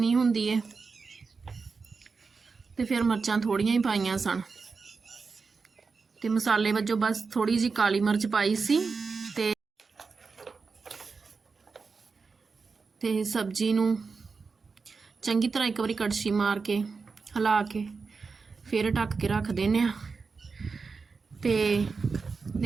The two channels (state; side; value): quieter; left; 4.8 dB